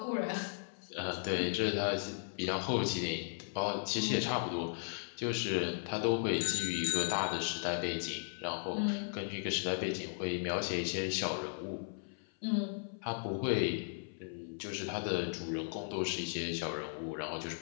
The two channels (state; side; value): silent; right; 54 dB below the other